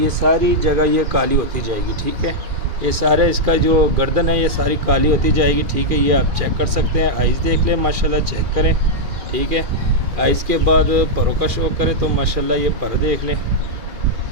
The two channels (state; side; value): late; left; 2.4 ms